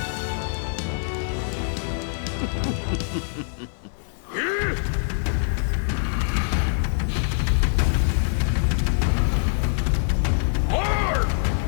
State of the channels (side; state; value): right; silent; digital silence